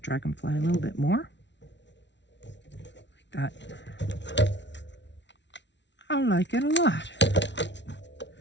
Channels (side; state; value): right; late; 0.51 ms